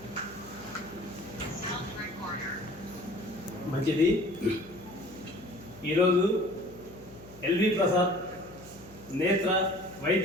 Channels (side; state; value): left; noise; hum, 22 dB below the sound